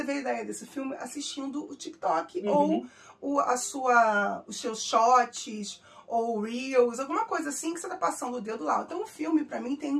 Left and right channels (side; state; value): both; identical; correlation 1.00